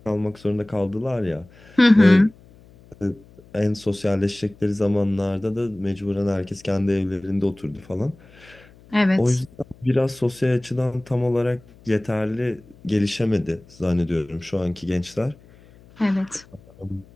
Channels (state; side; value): noise; left; hum, 25 dB below the sound